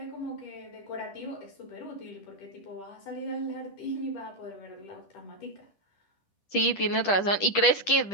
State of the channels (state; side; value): late; right; 10 ms